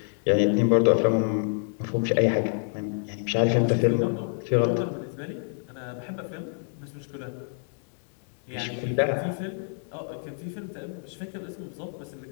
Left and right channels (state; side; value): silent; right; 60 dB below the other